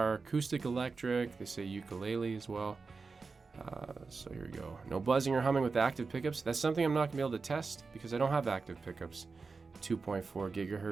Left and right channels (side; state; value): left; quieter; 4.4 dB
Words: acoustic electric. They say ukulele as well. So here we go. No buzzing or humming with active pickups. That's something I'm not gonna be able to test because I don't have active pickups. 2.4